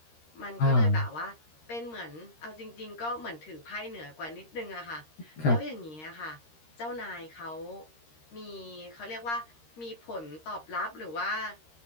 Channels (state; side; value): late; right; 13 ms